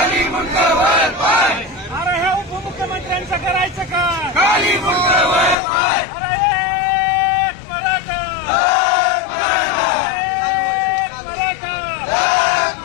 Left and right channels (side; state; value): right; drops out; at 5.6 s